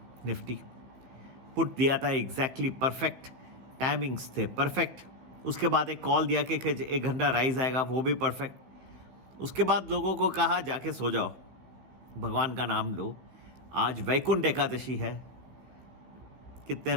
निफ्टी। पुट दिया था एग्जैक्टली परफेक्ट, टाइमिंग्स थे परफेक्ट। उसके बाद एक कॉल दिया कि 1 घंटा राइज आएगा, वो भी परफेक्ट। उसके बाद लोगों को कहा जाके सो जाओ, भगवान का नाम लो। आज वैकुंठ एकादशी है। कितने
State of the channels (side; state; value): left; late; 15 ms